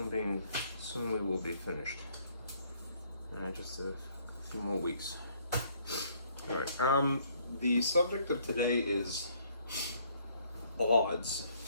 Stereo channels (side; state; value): both; inverted; correlation -0.65